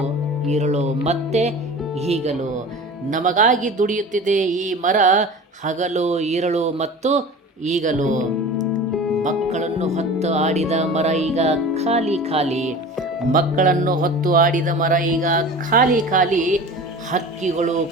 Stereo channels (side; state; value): both; normal; correlation 0.37